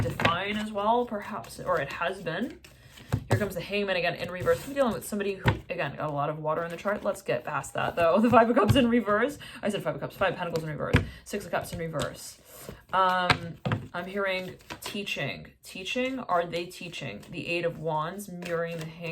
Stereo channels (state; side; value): identical; both; correlation 1.00